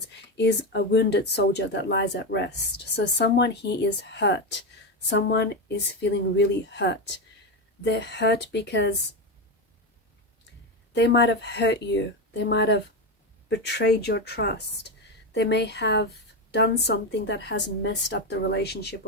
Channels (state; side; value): normal; both; correlation 0.13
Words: is a wounded soldier that lies at rest. So someone here is hurt. Someone is feeling really hurt. They're hurt because they might have hurt you. They might have betrayed your trust. They may have done something that has messed up the relationship,